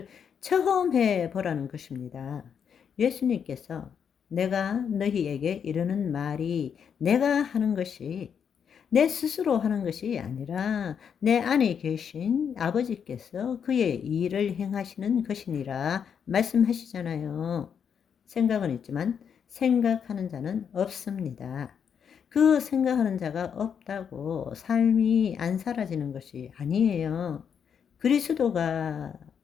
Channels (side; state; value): right; quieter; 7.5 dB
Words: 체험해 보라는 것입니다. 예수님께서 내가 너희에게 이르는 말이 내가 하는 것이 내 스스로 하는 것이 아니라 내 안에 계신 아버지께서 그의 일을 행하시는 것이니라 말씀하시잖아요. 생각은 있지만 생각하는 자는 없습니다. 그 생각하는 자가 없다고 삶이 안 사라지는 것이 아니에요. 그리스도가,